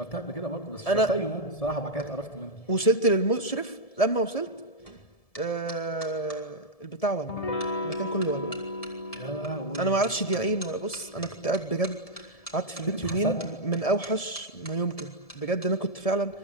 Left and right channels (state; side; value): late; right; 1.7 ms